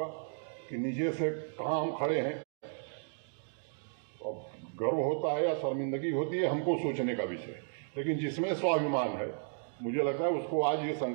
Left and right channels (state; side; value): silent; left; digital silence